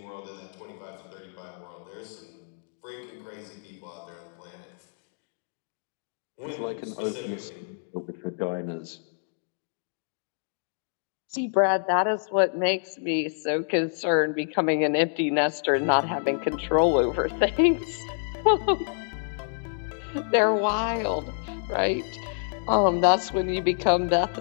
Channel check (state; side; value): silent; right; digital silence